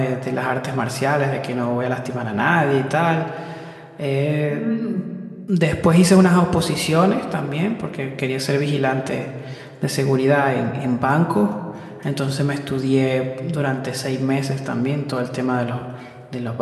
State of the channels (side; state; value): both; identical; correlation 1.00